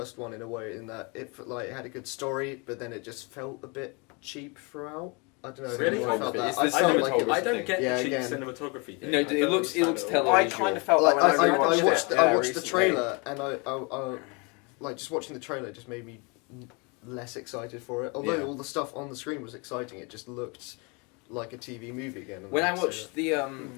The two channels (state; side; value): quieter; right; 30.8 dB